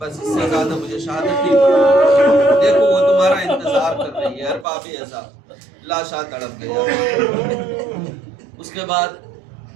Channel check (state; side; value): drops out; left; at 4.7 s